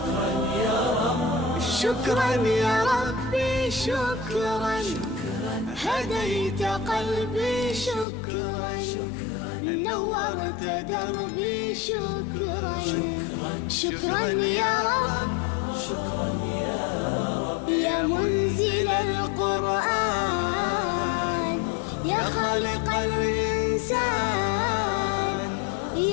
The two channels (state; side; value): drops out; right; at 8.1 s